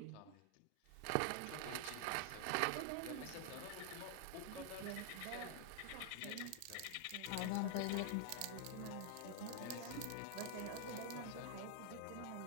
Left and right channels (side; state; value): both; different; correlation 0.00